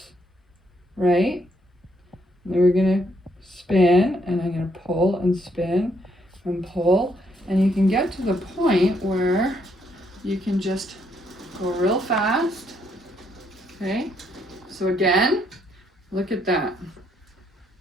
right? And then we're going to spin, and I'm going to pull and spin and pull. And you can get to the point where you can just go real fast. Okay, so again, look at that.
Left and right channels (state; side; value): normal; both; correlation 0.73